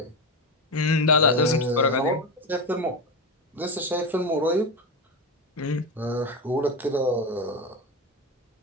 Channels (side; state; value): both; normal; correlation 0.18